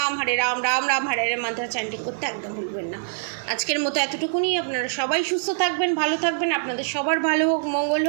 রাম রাম হরে হরে মন্ত্র চ্যান্টিং করতে একদম ভুলবেন না। আজকের মতো এতটুকুনি। আপনারা সবাই সুস্থ থাকবেন, ভালো থাকবেন, আপনাদের সবার ভালো হোক, মঙ্গল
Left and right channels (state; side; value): silent; left; 63 dB below the other